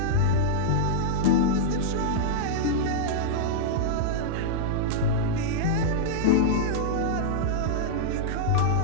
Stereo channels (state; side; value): different; both; correlation -0.02